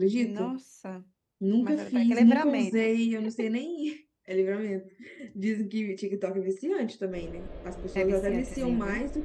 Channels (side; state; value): both; identical; correlation 1.00